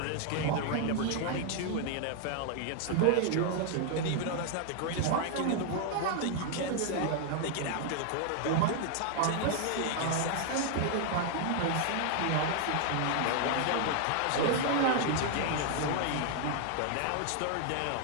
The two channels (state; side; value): different; both; correlation 0.00